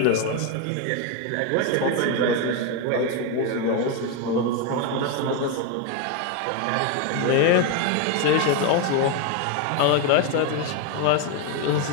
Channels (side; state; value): both; different; correlation 0.02